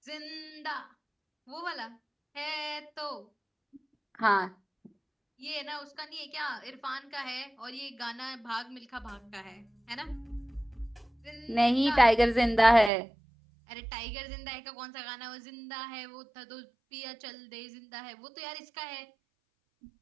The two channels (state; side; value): drops out; left; at 12.9 s